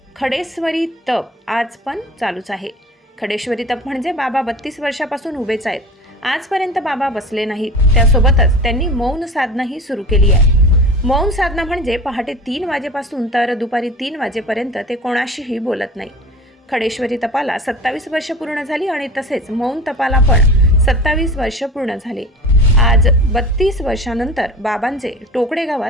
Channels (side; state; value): both; normal; correlation 0.37